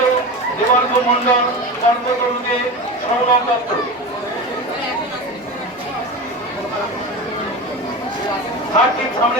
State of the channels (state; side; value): normal; both; correlation 0.27